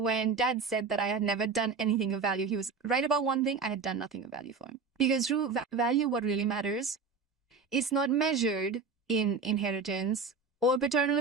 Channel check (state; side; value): quieter; left; 4.8 dB